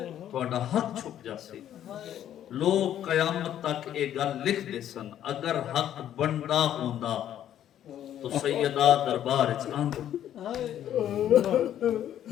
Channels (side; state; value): right; quieter; 11.0 dB